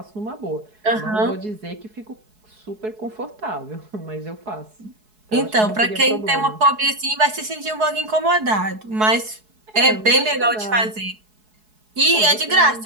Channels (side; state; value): left; late; 4.7 ms